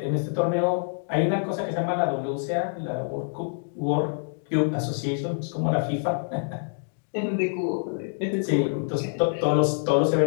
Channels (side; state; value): right; silent; digital silence